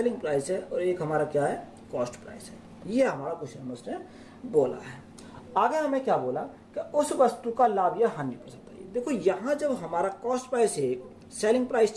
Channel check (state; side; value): identical; both; correlation 1.00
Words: प्राइस है, और 1 हमारा क्या है, कॉस्ट प्राइस है। ये हमारा क्वेश्चन में उसने बोला है। आगे हमें क्या बोला कि उस वस्तु का लाभ या हानि प्रतिशत है। देखो यहाँ जब हमारा कॉस्ट प्राइस है, सेलिंग प्राइस